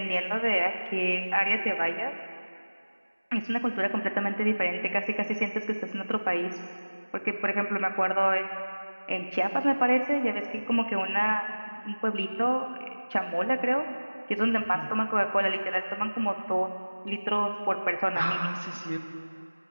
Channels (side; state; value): both; inverted; correlation -1.00